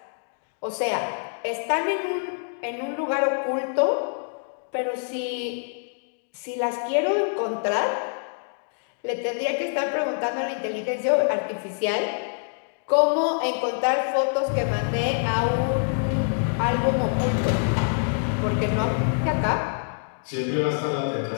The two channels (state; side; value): silent; right; digital silence